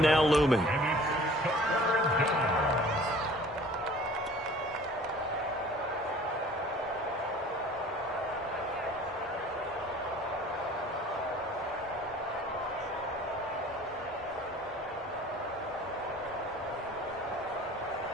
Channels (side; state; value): both; normal; correlation 0.48